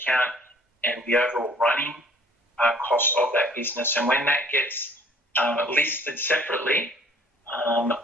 and the overall running costs of that business. And when that gets listed separately,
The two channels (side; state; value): both; normal; correlation 0.54